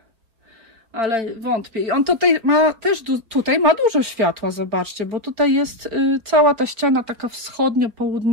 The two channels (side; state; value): left; late; 4.3 ms